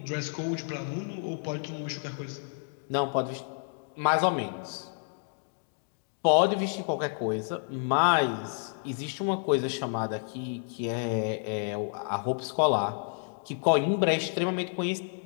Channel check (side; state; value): right; silent; 58 dB below the other